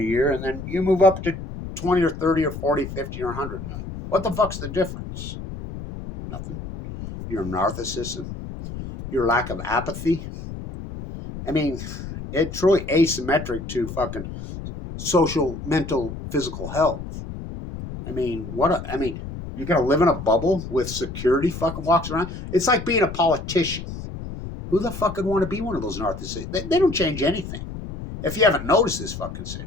year, and then you move up to 20 or 30 or 40, 50 or 100 million. What the fuck's the difference? Nothing. Your narcissism, your lack of apathy. I mean, it's really asymmetric to fucking social, mental, physical health. I mean, you're going to live in a bubble with security fucking walks around? It's like being a politician. Who the fuck would want to be one of those narcissists? They don't change anything. If you haven't noticed this fucking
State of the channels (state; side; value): noise; left; rumble, 9 dB below the sound